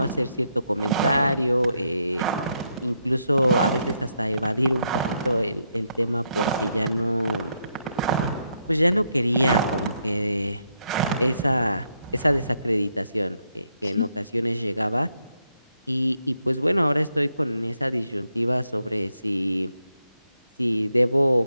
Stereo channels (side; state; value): both; inverted; correlation -0.79